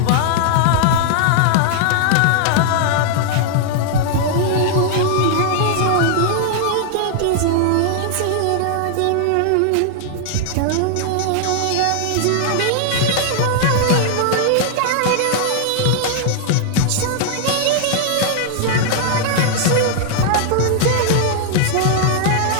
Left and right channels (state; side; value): different; both; correlation 0.00